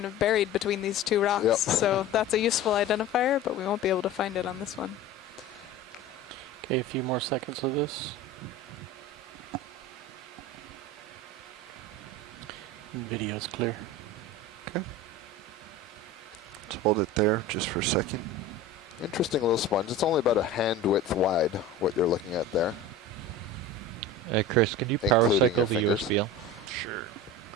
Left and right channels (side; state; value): both; normal; correlation 0.33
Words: of buried between these two rocks. Yep. So that's a useful identifier, but we won't be able to find it on this one. Okay, a few more seconds of this. Video's clear. Okay. Let's hold it there just for a second. Interesting little sponge. It's only about a hand width wide, what you're looking at there. Chris, can you power Including cycle your the fingers. USBL? Sure.